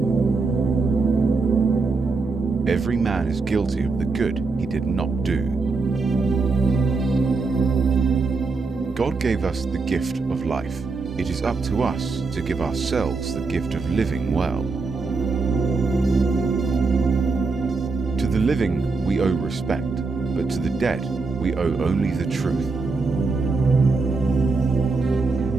Every man is guilty of the good he did not do. God gave us the gift of life. It is up to us to give ourselves the gift of living well. To the living we owe respect, but to the dead we owe only the truth.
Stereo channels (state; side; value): quieter; left; 4.0 dB